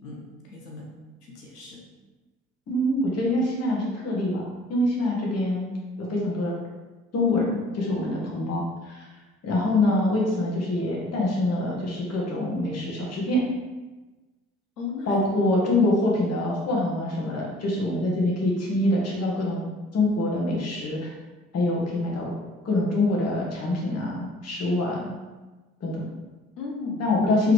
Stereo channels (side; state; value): both; normal; correlation 0.54